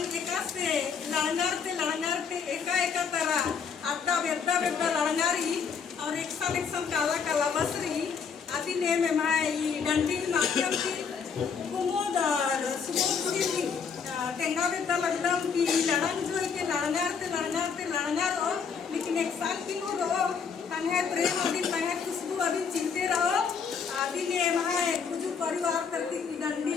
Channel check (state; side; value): quieter; right; 6.2 dB